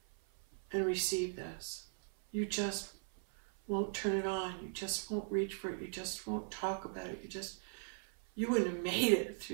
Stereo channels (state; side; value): silent; left; 52 dB below the other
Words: and receive this. You just won't turn it on. You just won't reach for it. You just won't talk about it. You wouldn't have made it